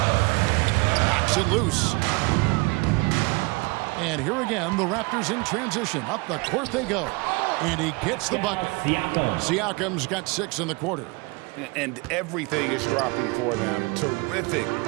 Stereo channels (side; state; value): left; quieter; 27.0 dB